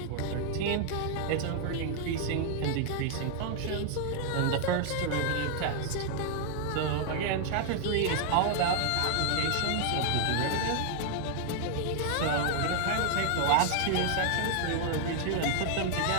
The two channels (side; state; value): both; different; correlation 0.00